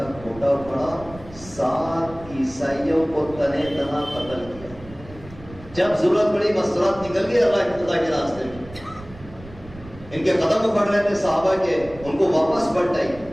کھوٹا اکھاڑا، 7 عیسائیوں کو تنے تنا قتل کیا۔ جب ضرورت پڑی مستورات نکل گئی اللہ کے راستے میں، ان کے قدم اکھڑ رہے تھے صحابہ کے، ان کو واپس پلٹائی۔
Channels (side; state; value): right; noise; rumble, 18 dB below the sound